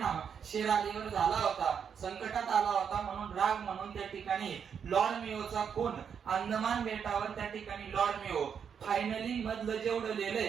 शेर अलीवर झाला होता, संकटात आला होता, म्हणून राग म्हणून त्या ठिकाणी लॉर्ड मियोचा खून अंदमान बेटावर त्या ठिकाणी लॉर्ड मियो. फायनली मधलं जेवढं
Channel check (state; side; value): quieter; left; 7.3 dB